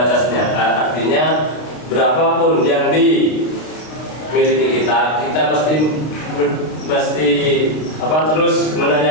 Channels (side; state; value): right; late; 32 ms